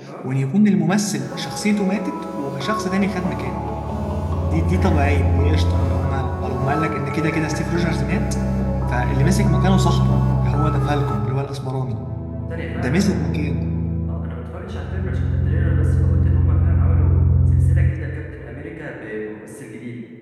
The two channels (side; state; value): both; identical; correlation 1.00